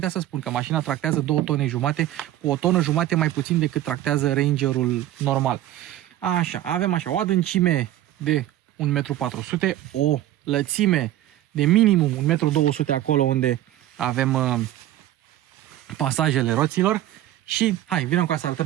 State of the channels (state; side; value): quieter; left; 13.7 dB